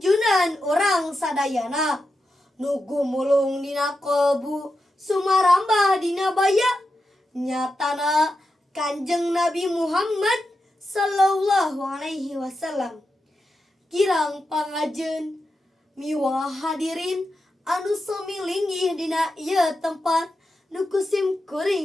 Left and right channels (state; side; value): normal; both; correlation 0.89